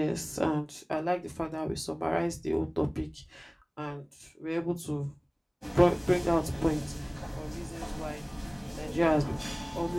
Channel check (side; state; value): both; identical; correlation 1.00